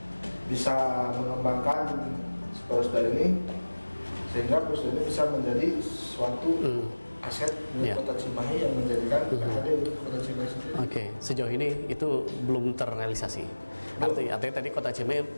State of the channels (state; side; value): inverted; both; correlation -1.00